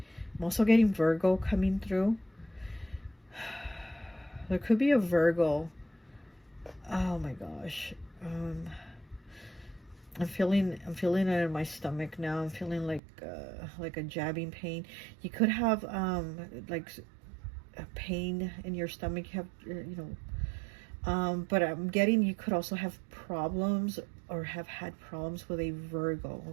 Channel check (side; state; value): left; drops out; at 13.0 s